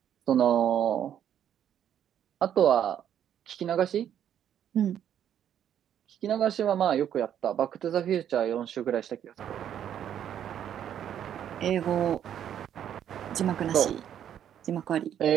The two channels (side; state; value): left; quieter; 9.8 dB